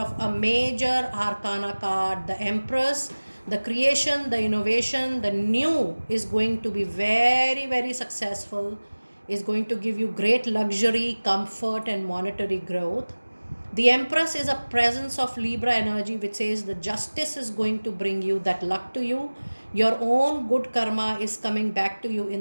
a major arcana card, the Empress. The creation, the innovation, the new is going to be very, very successful, is going to give you great luxury, comfort, and monetary growth. The Empress is a presence of Libra energy, which says the justice is going to bring you that luck to you. Your own good karma is coming back to you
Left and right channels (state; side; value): inverted; both; correlation -1.00